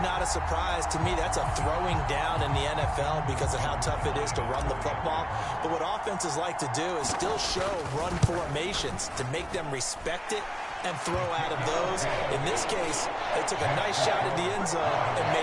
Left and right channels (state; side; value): identical; both; correlation 1.00